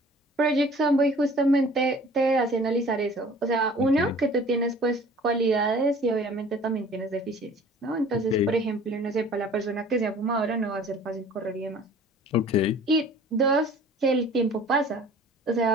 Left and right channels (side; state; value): both; normal; correlation 0.48